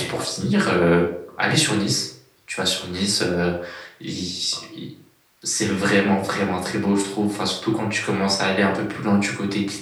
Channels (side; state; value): both; identical; correlation 1.00